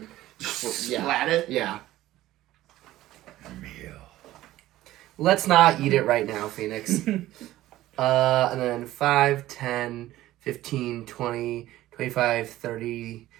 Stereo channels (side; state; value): left; quieter; 15.3 dB